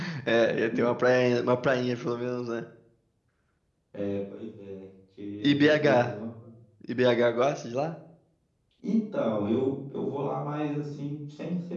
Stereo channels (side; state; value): both; identical; correlation 1.00